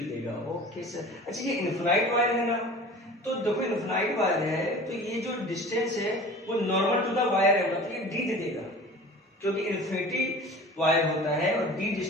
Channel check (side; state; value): both; normal; correlation 0.40